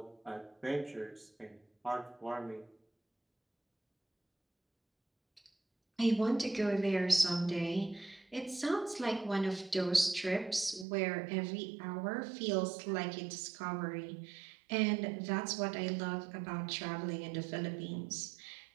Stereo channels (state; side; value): drops out; left; at 10.9 s